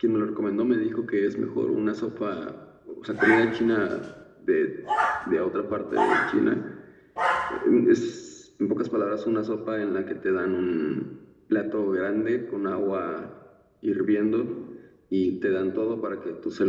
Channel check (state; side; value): identical; both; correlation 1.00